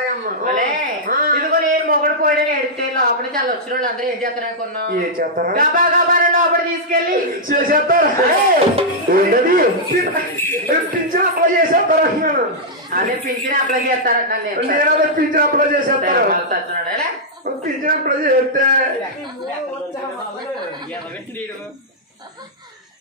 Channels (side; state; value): both; normal; correlation -0.07